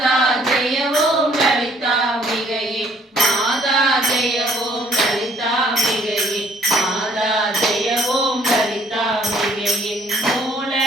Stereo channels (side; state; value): both; normal; correlation 0.62